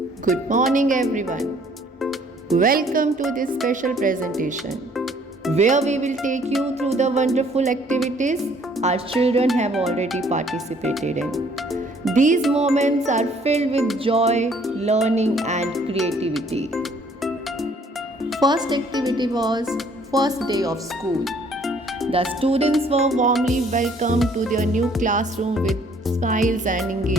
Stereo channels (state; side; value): normal; both; correlation 0.60